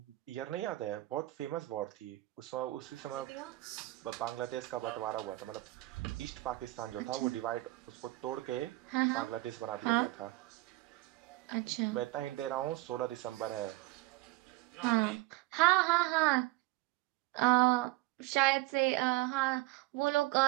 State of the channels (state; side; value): quieter; left; 19.9 dB